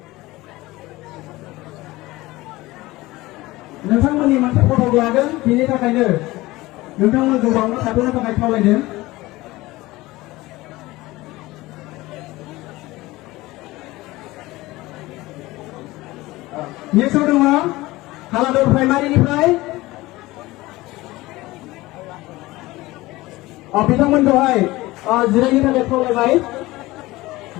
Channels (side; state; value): right; quieter; 19.3 dB